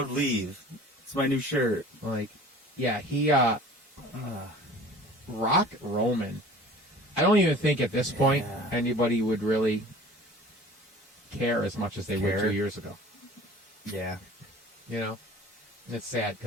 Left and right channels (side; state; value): both; normal; correlation 0.45